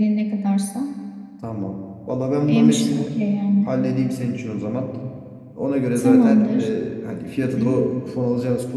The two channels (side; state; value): both; identical; correlation 1.00